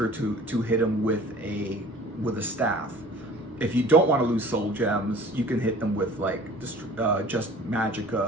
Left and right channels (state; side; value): normal; both; correlation 0.46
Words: to hit them with a staff. If you don't want to lose soul gems, you can hit them with like just